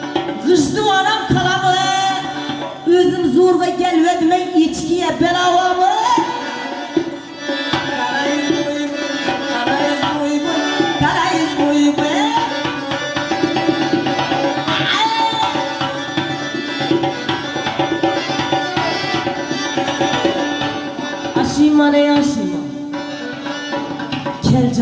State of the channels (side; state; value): both; identical; correlation 1.00